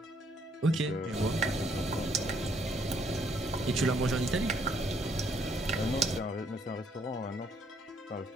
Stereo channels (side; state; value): both; normal; correlation 0.68